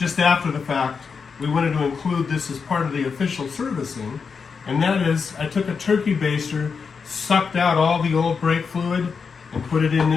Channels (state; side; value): quieter; right; 5.6 dB